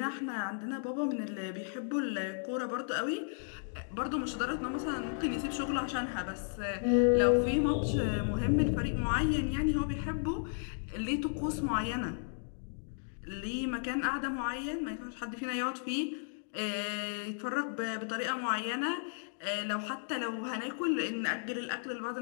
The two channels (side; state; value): right; silent; digital silence